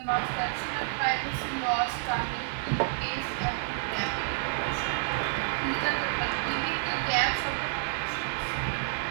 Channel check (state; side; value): silent; left; digital silence